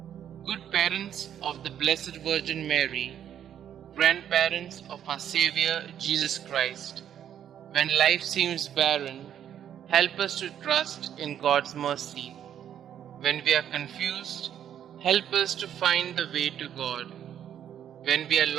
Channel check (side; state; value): left; quieter; 9.8 dB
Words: Good parents of the Blessed Virgin Mary, grandparents of our Xavier, Jesus Christ, when life seems barren, help us to trust in God's mercy. When we are confused, help us to find the way to God. When we are